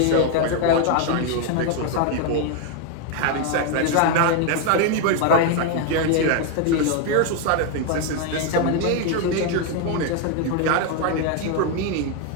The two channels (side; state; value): both; different; correlation 0.01